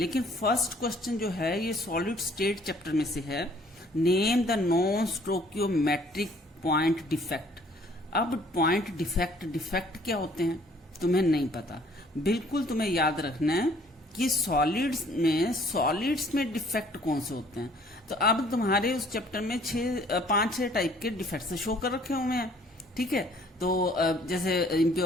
फर्स्ट क्वेश्चन जो है ये सॉलिड स्टेट चैप्टर में से है। Name the non stoichiometric point defect. अब पॉइंट डिफेक्ट क्या होते हैं तुम्हें नहीं पता, बिल्कुल तुम्हें याद रखना है कि सॉलिड्स में डिफेक्ट कौन से होते हैं। तो अब तुम्हारे उस चैप्टर में 5-6 टाइप के डिफेक्ट शो कर रखे हुए हैं, ठीक है। तो जैसे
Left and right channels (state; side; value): normal; both; correlation 0.58